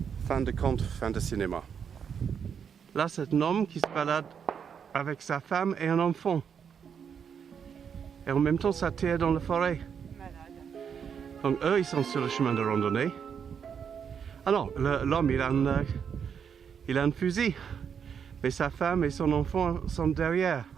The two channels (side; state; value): left; quieter; 7.3 dB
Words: Fin de conte, fin de cinéma. Là, c'est un homme qui se balade avec sa femme et un enfant. Et en même temps, ça tire dans la forêt. Donc eux, ils sont sur le chemin de randonnée. Ah non, l'homme, il a un fusil. Mais sa femme et son enfant sont derrière.